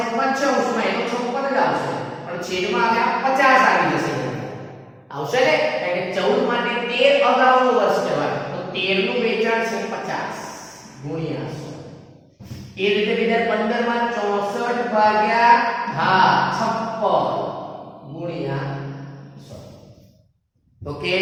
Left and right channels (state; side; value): identical; both; correlation 1.00